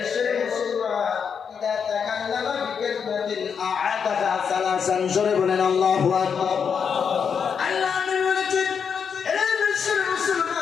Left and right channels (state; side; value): quieter; right; 6.7 dB